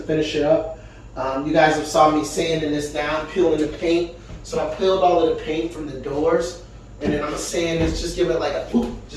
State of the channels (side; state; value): both; identical; correlation 1.00